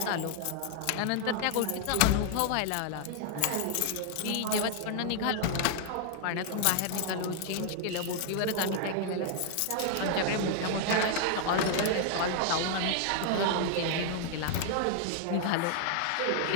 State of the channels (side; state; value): both; different; correlation 0.00